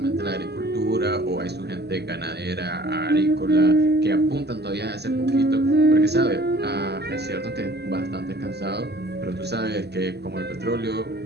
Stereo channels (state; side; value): late; left; 0.48 ms